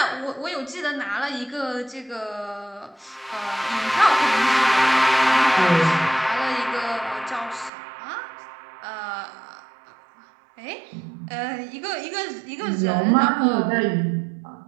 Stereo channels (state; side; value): drops out; left; at 7.7 s